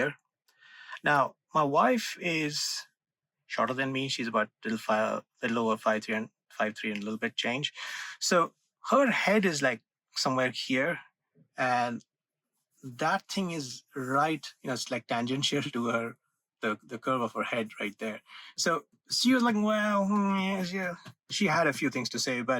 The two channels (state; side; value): identical; both; correlation 1.00